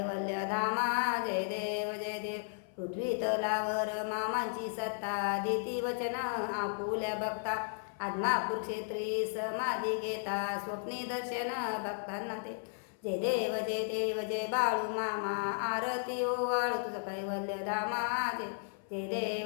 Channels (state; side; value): silent; right; 55 dB below the other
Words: धामा जय देव पृथ्वी तलावर मामांची सत्ता देती वचन आपुल्या बघता आदमापूर क्षेत्री समाधी घेता स्वप्नी दर्शन भक्तांना ते जय देव जय बाळू मामा आरती ओवाळू तुझं कैवल्य धामा